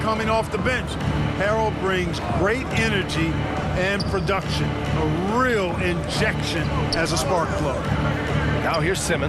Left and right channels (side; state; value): both; identical; correlation 1.00